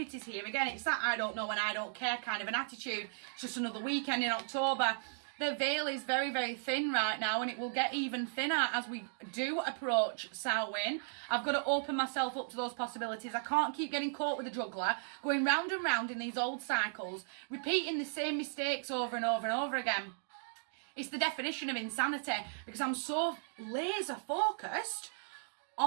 here. Again, it's that I don't know and I don't care kind of an attitude. It's just another weekend in October. The veil is very, very thin right now and it will get even thinner as we do approach Samhain. I've got to open myself up to those possibilities. I can't keep getting caught with a juggler, going round and round in these old cycles, repeating the same mistakes over and over and over again. It's the definition of insanity because I'm so laser focused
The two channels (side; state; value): left; silent; digital silence